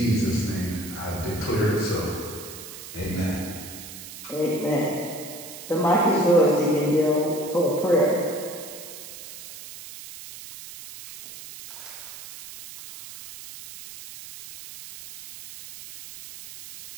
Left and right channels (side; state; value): right; noise; hiss, 13 dB below the sound